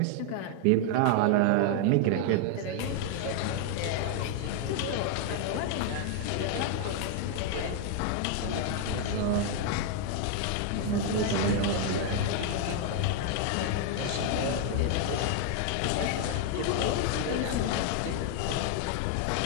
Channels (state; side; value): different; both; correlation 0.00